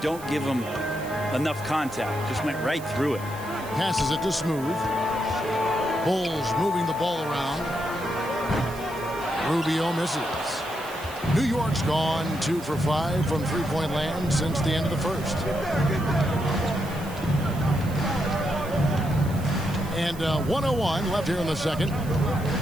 give him enough contact. Just went right through it. Passes it to Smooth. Bulls moving the ball around. Rubio misses. New York's gone 2 for 5 from three-point land since the end of the first. And 1:01 left here in the second.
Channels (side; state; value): right; noise; hiss, 18 dB below the sound